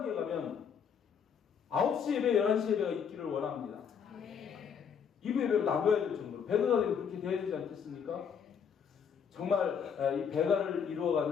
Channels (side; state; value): right; quieter; 7.1 dB